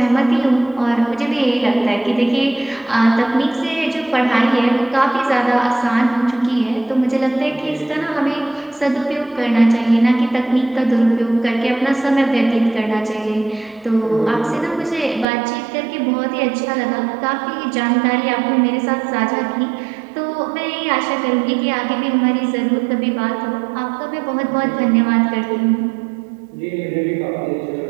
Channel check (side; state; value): left; drops out; at 15.2 s